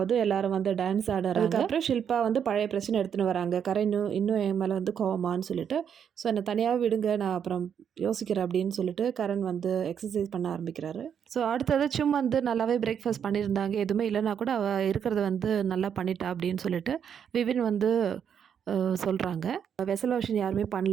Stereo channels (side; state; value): left; quieter; 8.1 dB